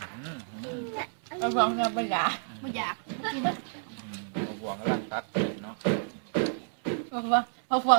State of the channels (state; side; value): silent; left; digital silence